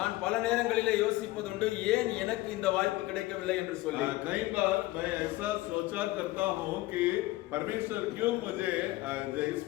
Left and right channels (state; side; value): quieter; right; 18.6 dB